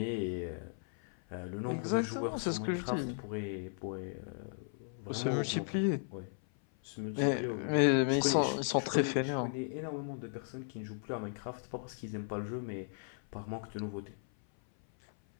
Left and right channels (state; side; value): silent; right; 54 dB below the other